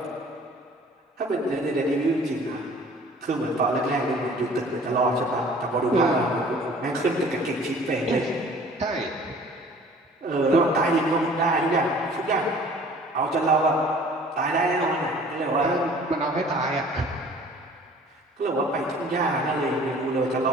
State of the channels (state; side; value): normal; both; correlation 0.50